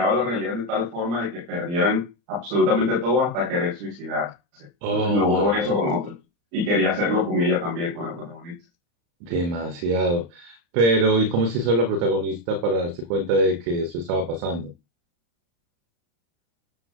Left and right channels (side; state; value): left; late; 35 ms